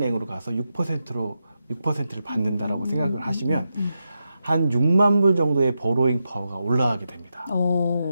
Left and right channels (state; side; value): inverted; both; correlation -0.87